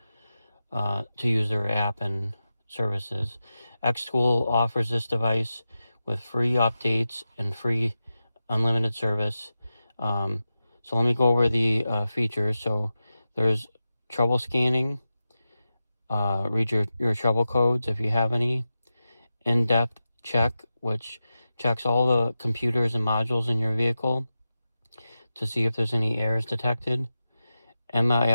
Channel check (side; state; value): both; inverted; correlation -0.91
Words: to use their app and services. Xtool offers this device with free updates and free unlimited service. So let me go over the features. So there's trouble scanning, read your trouble codes if you have any, in-depth check, which checks all the computers and modules in your vehicle to see if there's any errors detected.